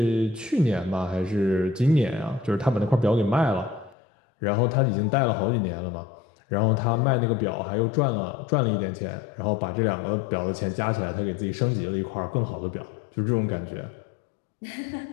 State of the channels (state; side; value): drops out; right; at 4.0 s